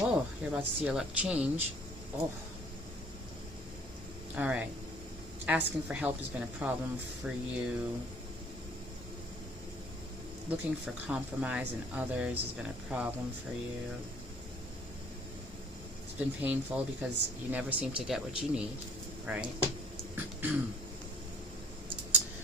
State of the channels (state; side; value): normal; both; correlation 0.58